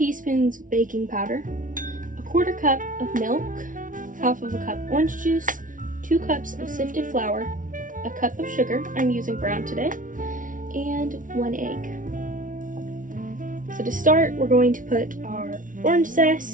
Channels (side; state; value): left; late; 0.38 ms